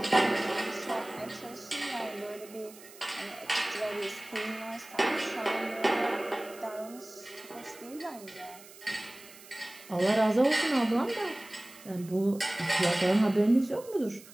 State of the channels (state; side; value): noise; right; hiss, 20 dB below the sound